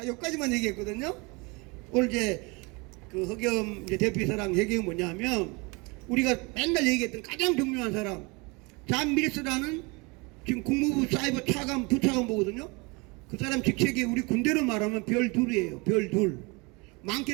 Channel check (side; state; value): left; quieter; 27.9 dB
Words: 여기까지만 얘기했거든요. 오늘 이제 그 허겸 이제 대표이사랑 얘기가 뭐냐면 우리가 맨날 얘기했던 가장 중요한 사람 잔 밀스라는 지금 국무부 사이버 차관 부차관 보거든요. 그 사람 직책이 우리 군대로 말하면 별 둘이에요. 별 둘.